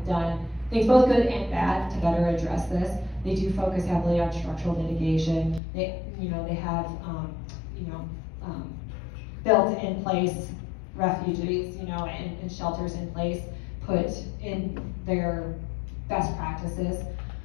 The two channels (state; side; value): drops out; right; at 5.6 s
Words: done things both good and bad to better address this. They do focus heavily on structural mitigation. They have, built in place refuges, and shelters in place, put in their best practices.